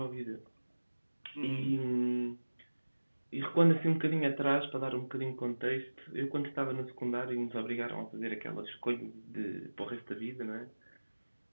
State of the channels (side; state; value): both; inverted; correlation -1.00